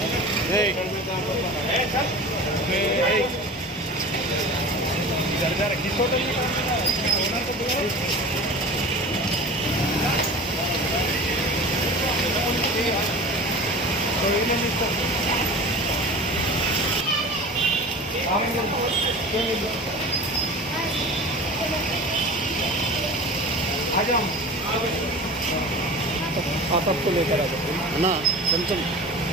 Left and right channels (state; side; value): normal; both; correlation 0.36